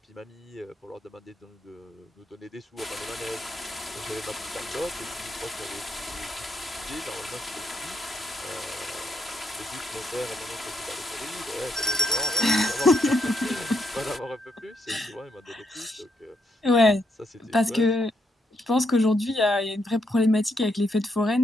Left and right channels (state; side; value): normal; both; correlation 0.78